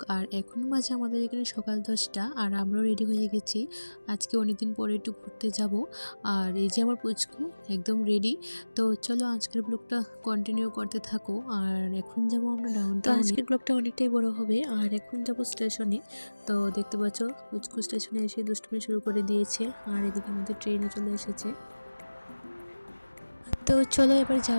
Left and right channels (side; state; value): both; inverted; correlation -1.00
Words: আর এখন বাজে আমাদের এখানে সকাল 10টা, আর আমরাও রেডি হয়ে গেছি। আজকে অনেকদিন পরে একটু ঘুরতে যাব। আর এই যে আমার পুচকু একদম রেডি। তো চলো আজকের ব্লগটা কন্টিনিউ করতে থাকো। আর এখন যাব আমরা ডাউনটাউনে। আজকের ব্লগটা অনেকটাই বড় হবে। আর এখন যাব স্টেশনে। তো দেখতে পাচ্ছ পুচকু স্টেশনে এসে দুষ্টুমি শুরু করে দিয়েছে। আর এদিকে আমাদের ট্রেনও চলে এসেছে। তো চলো এবার